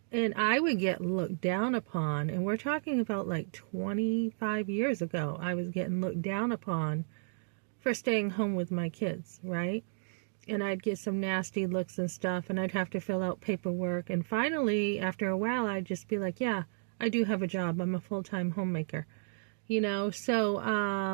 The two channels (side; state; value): left; silent; digital silence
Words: And I would get looked down upon, and we're talking about like 25 years ago. I was getting looked down upon for staying home with my kids, right? And I'd get some nasty looks and stuff, and I'd have to fill out paperwork. And finally, after a while, I'd just be like, yeah, I do have a job. I'm a full-time homemaker.